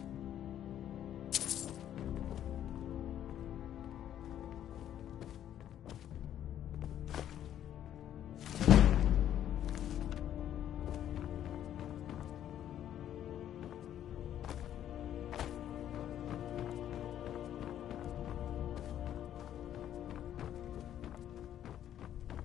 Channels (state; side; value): quieter; right; 10.9 dB